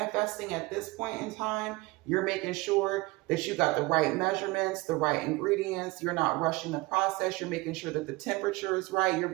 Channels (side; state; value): left; quieter; 22.3 dB